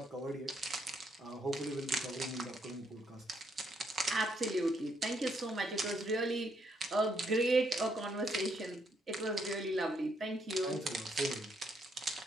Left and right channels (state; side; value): normal; both; correlation 0.74